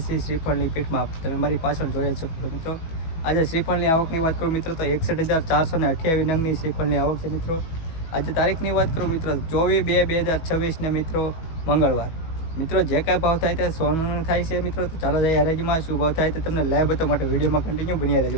છીએ શ્રીફળની પીઠમાં। તમે મારી પાછળ જોઈ શકો છો મિત્રો। આજે શ્રીફળની આવકની વાત કરું મિત્રો તો 61,428 નંગની શ્રીફળની આવક છે મિત્રો। આજે તારીખની વાત કરું મિત્રો 24/2/2026 ને મિત્રો મંગળવાર। મિત્રો જે કાંઈ ભાવ થાય તે સોનું થાય છે મિત્રો। તો ચાલો જઈએ હરાજીમાં શું ભાવ થાય તે તમને લાઈવ બતાવવા માટે વિડીયોમાં કન્ટિન્યુ બન્યા રહેજો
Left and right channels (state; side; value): late; right; 18 ms